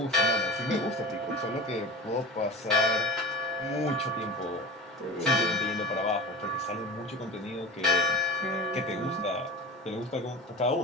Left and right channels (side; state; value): both; normal; correlation 0.32